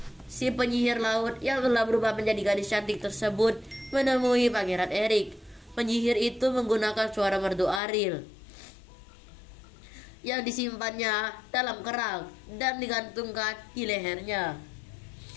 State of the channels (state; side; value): drops out; right; at 7.8 s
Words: si penyihir laut yang telah berubah menjadi gadis cantik tersebut menemui Pangeran Erik. Penyihir itu menggunakan suara merdu Ariel yang disimpannya dalam kerang dan digantungkan di lehernya.